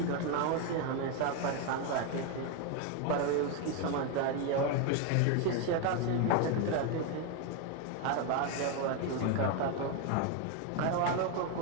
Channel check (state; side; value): different; both; correlation 0.01